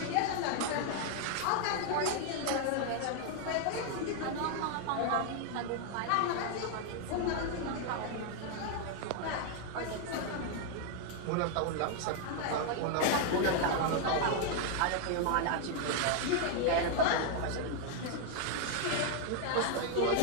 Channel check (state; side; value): different; both; correlation 0.00